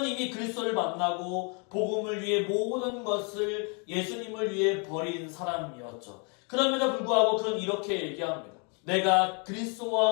이미 그리스도를 만나고 복음을 위해 모든 것을 예수님을 위해 버린 사람이었죠. 그럼에도 불구하고 그는 이렇게 얘기합니다. 내가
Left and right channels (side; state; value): right; quieter; 36.0 dB